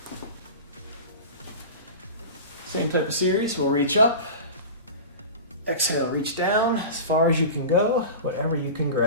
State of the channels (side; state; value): both; inverted; correlation -0.32